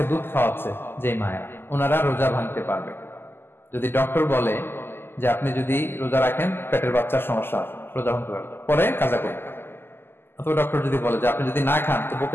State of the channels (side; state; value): right; late; 0.11 ms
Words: দুধ খাওয়াচ্ছে যে মায়েরা, ওনারা রোজা ভাঙতে পারবে। যদি ডক্টর বলে যে আপনি যদি রোজা রাখেন পেটের বাচ্চার সমস্যা আছে, রোজা ভাঙতে পারবে, পরে কাজা করবে। অথবা ডক্টর যদি বলে যে আপনি যদি না খান তো